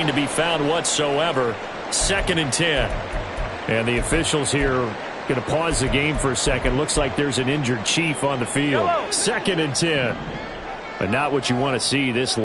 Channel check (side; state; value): both; identical; correlation 1.00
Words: to be found whatsoever. Second and 10. And the officials here going to pause the game for a second. Looks like there's an injured Chief on the field. Second and 10. But not what you want to see this